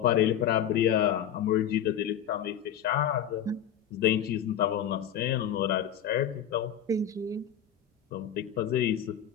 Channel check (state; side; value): quieter; right; 9.3 dB